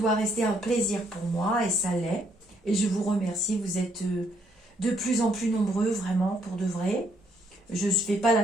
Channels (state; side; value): normal; both; correlation 0.71